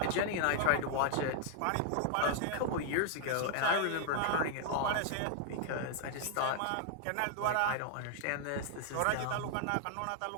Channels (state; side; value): different; both; correlation 0.00